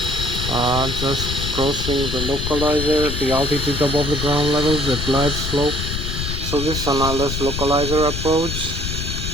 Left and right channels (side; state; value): left; noise; rumble, 4 dB below the sound